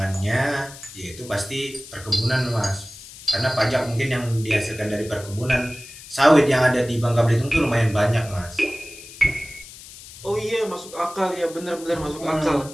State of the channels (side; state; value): left; noise; hiss, 17 dB below the sound